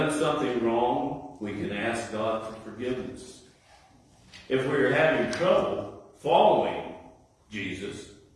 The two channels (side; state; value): both; identical; correlation 1.00